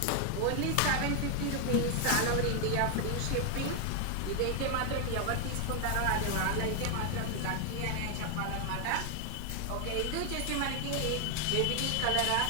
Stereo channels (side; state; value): both; different; correlation 0.00